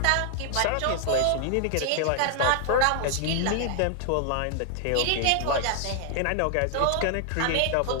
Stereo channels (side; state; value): both; different; correlation 0.00